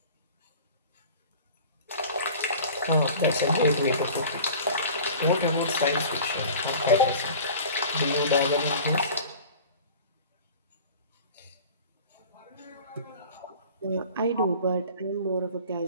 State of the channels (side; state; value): both; inverted; correlation -0.41